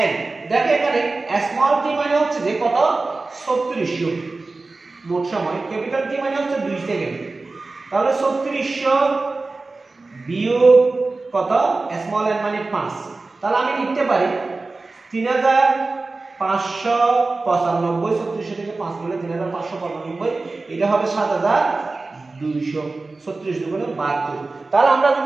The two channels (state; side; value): quieter; left; 3.5 dB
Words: n। দেখো এখানে স্মল t মানে হচ্ছে যে কত? 3400 মোট সময়। ক্যাপিটাল T মানে হচ্ছে 2 সেকেন্ড। তাহলে 3400 বিয়োগ কত? স্মল n মানে 5। তাহলে আমি লিখতে পারি 3595। 3400 থেকে 5 গেলে 3595, এটা হবে 7200। 36 দুগুণে 72। তাহলে আমরা